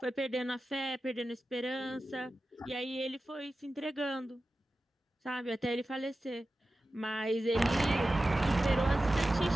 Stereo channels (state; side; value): normal; both; correlation 0.94